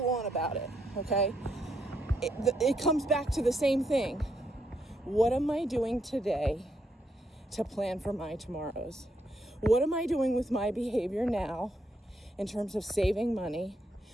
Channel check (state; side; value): normal; both; correlation 0.77